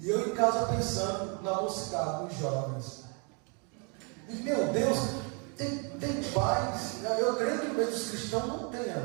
eu em casa pensando na mocidade, nos jovens. E, meu Deus, tem pais, eu creio que no meio dos cristãos não tenha,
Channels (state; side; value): quieter; left; 35.3 dB